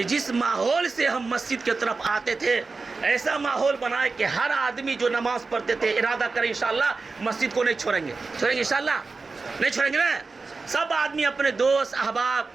جس ماحول سے ہم مسجد کی طرف آتے تھے، ایسا ماحول بنائے کہ ہر آدمی جو نماز پڑھتے تھے ارادہ کریں انشاءاللہ مسجد کو نہیں چھوڑیں گے انشاءاللہ نہیں چھوڑیں گے نا. سب آدمی اپنے دوست احباب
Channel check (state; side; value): quieter; left; 4.1 dB